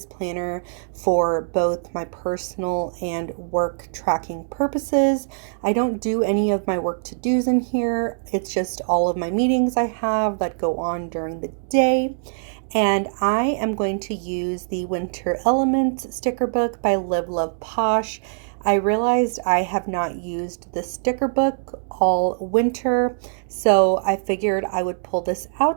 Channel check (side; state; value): left; silent; digital silence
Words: planner for both my personal and work tracking purposes. I don't do any of my work to-dos in here. It's just all of my meetings I have that go on during the day. And I am going to use the Winter Elements sticker book by Live.Love.Posh. I realized I have not used the sticker book all winter, so I figured I would pull this